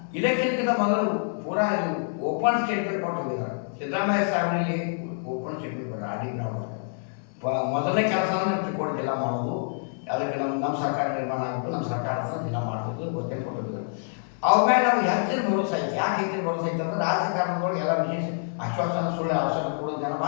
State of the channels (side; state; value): right; silent; 58 dB below the other